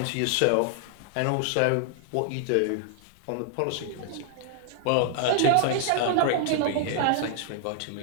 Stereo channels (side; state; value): both; different; correlation 0.00